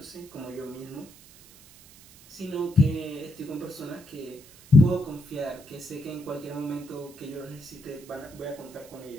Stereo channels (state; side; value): noise; right; hiss, 22 dB below the sound